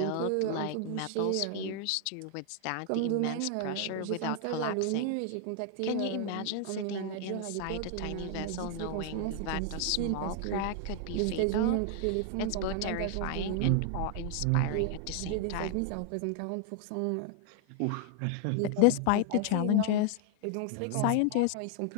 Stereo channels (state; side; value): different; both; correlation 0.00